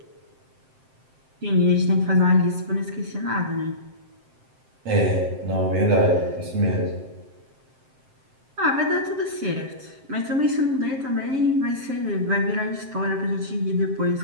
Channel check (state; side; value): late; left; 7.7 ms